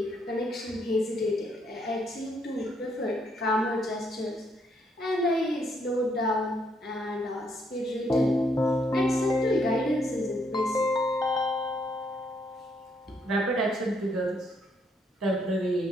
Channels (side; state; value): both; normal; correlation 0.73